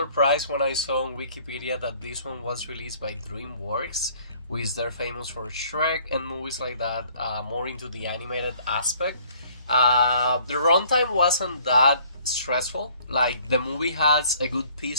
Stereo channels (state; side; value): inverted; both; correlation -0.57